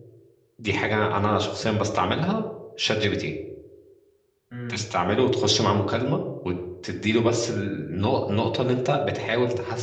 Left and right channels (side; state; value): both; identical; correlation 1.00